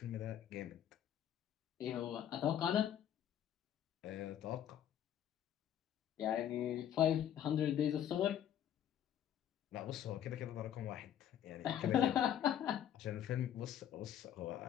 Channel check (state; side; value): quieter; right; 10.4 dB